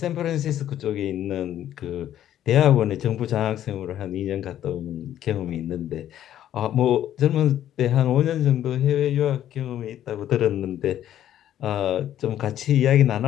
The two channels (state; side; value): quieter; right; 11.5 dB